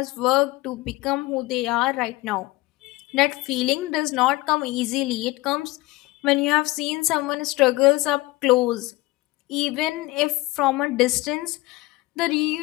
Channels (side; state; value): right; quieter; 20.1 dB